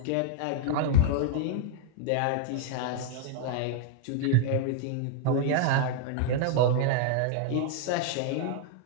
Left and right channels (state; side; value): different; both; correlation -0.01